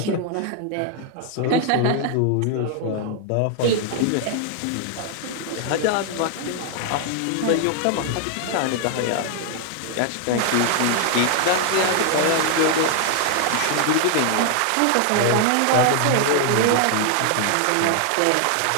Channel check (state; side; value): different; both; correlation 0.00